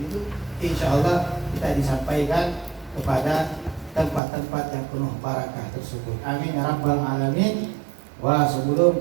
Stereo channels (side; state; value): left; drops out; at 4.2 s